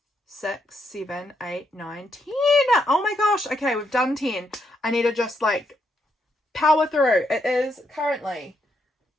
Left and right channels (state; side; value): normal; both; correlation 0.78